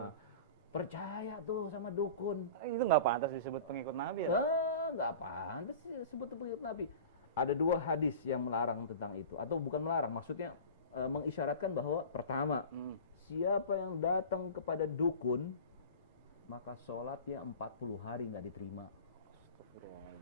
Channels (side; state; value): both; inverted; correlation -0.36